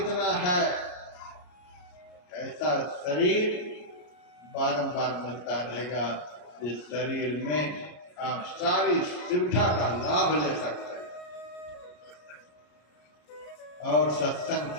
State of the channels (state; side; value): late; right; 33 ms